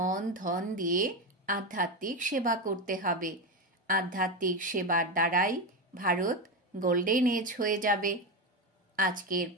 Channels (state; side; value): normal; both; correlation 0.13